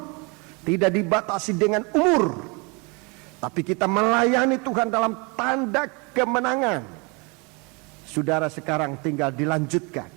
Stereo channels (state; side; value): quieter; left; 30.3 dB